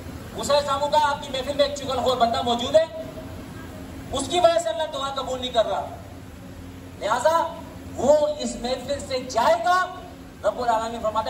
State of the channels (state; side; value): identical; both; correlation 1.00